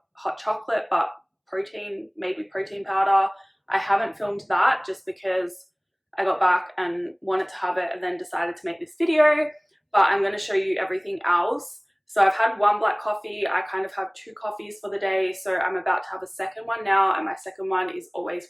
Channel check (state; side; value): identical; both; correlation 1.00